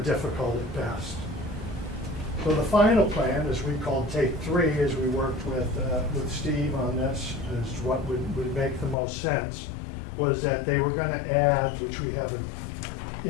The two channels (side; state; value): right; drops out; at 9.0 s